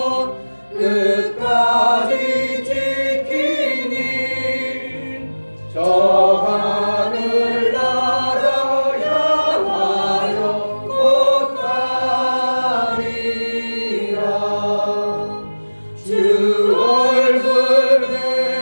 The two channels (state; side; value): inverted; both; correlation -1.00